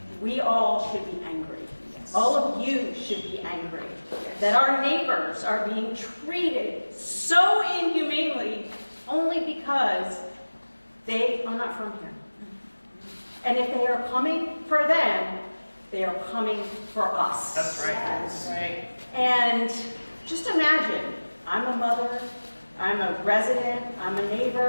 We all should be angry. Yes. All of you should be angry that our neighbors are being treated so inhumanely only because they are not from here. And if they are coming for them, they are coming for us. That's right. That's right. And just imagine, I'm a mother, I'm a resident, I'm a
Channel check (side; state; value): both; inverted; correlation -1.00